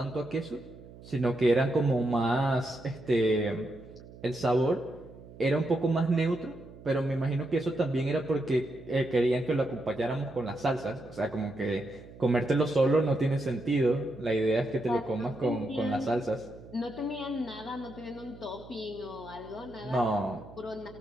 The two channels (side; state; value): right; noise; hum, 18 dB below the sound